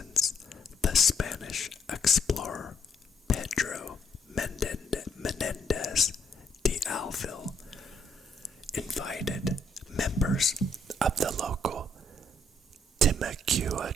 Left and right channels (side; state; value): both; normal; correlation 0.70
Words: the Spanish explorer Pedro Menendez de Alvil invited members of the local Timucua